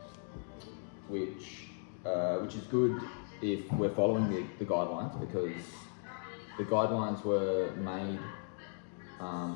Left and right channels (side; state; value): right; silent; 53 dB below the other